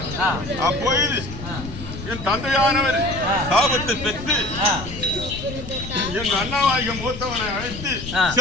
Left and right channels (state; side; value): noise; left; rumble, 10 dB below the sound